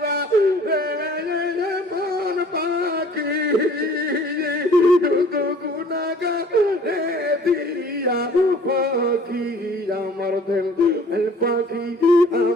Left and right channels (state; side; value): normal; both; correlation 0.52